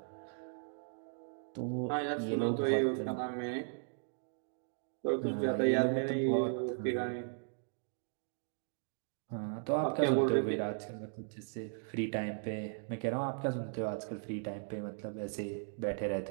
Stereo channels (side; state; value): left; silent; digital silence